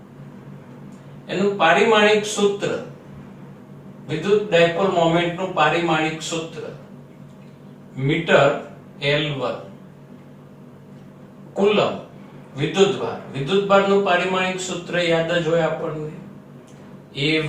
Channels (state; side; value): identical; both; correlation 1.00